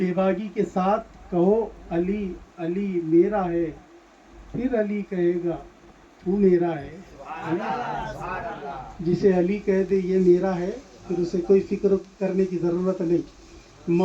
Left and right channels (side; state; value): both; identical; correlation 1.00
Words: باکی کے ساتھ کہو، علی علی میرا ہے، پھر علی کہے گا تو میرا ہے. جسے علی کہہ دے یہ میرا ہے، پھر اسے کوئی فکر کرنے کی ضرورت نہیں.